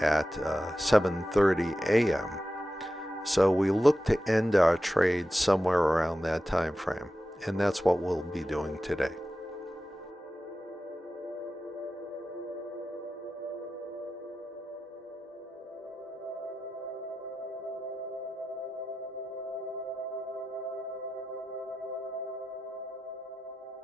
at 7:30 a.m. So we look to end our trade somewhere around that time frame, and that's what we'll be doing today.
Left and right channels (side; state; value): both; normal; correlation 0.92